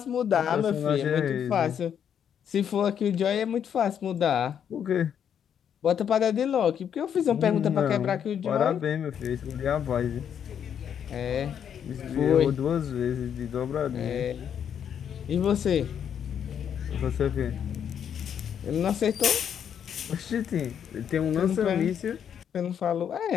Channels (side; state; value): right; quieter; 8.5 dB